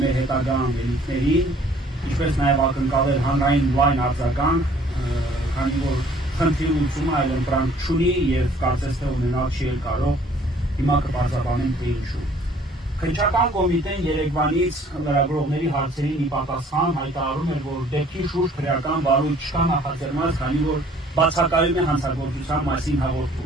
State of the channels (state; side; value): normal; both; correlation 0.57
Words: մեր հետագա անելիքներին, ինչպես նաեւ ակնկալել հանրային լայն արձագանք, քանի որ խնդրի լուծումը այլ ընտրանք չունի եւ կարծես թե ունենալ չի կարող, հիմա կբարձրաբանեմ թե ինչու։ Քննչական կոմիտեն Երևանից լրագրողների հարցերին ի պատասխան հայտարարում էր, որ դեպքի շուրջ քրեական վարույթ չկա նախաձեռնված, քանի որ բացակայում է հանցագործության մասին